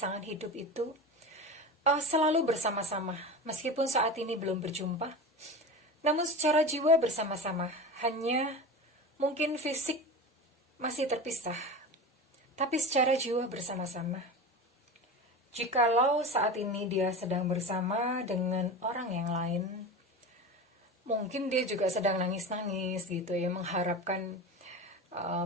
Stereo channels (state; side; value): normal; both; correlation 0.28